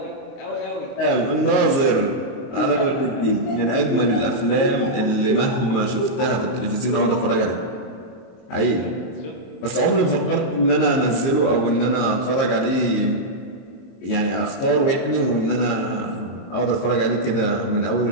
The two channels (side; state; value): right; late; 22 ms